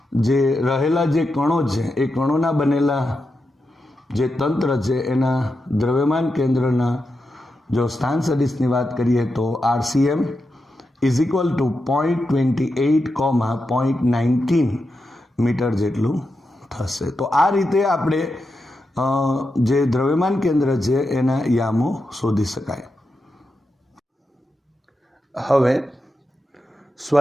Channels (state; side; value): normal; both; correlation 0.88